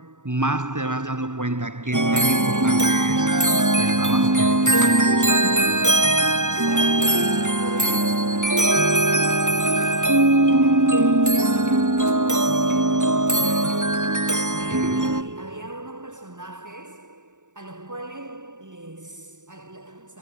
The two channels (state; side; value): late; left; 0.86 ms